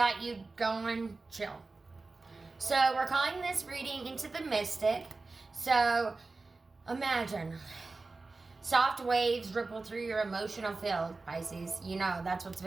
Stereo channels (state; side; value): quieter; left; 3.7 dB